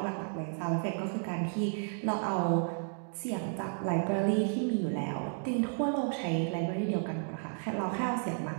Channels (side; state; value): left; silent; 56 dB below the other